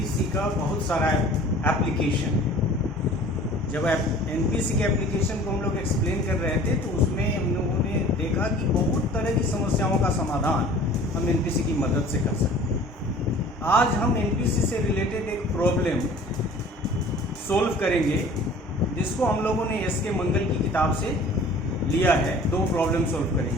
का बहुत सारा एप्लीकेशन है। जब एनपीसी के एप्लीकेशन को हम लोग एक्सप्लेन कर रहे थे तो उसमें हम लोगों ने देखा कि बहुत तरह की समस्याओं का समाधान हम एनपीसी की मदद से कर सकते हैं। आज हम एनपीसी से रिलेटेड एक प्रॉब्लम सोल्व करेंगे जिसको हम लोगों ने एस के मंगल की किताब से लिया है। दो प्रॉब्लम सोल्व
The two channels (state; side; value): normal; both; correlation 0.47